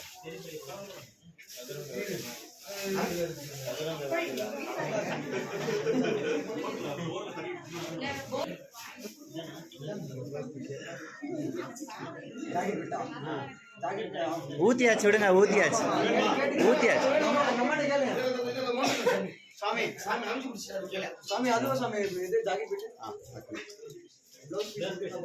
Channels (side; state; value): both; identical; correlation 1.00